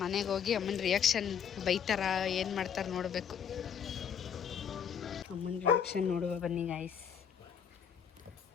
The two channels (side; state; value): right; quieter; 7.9 dB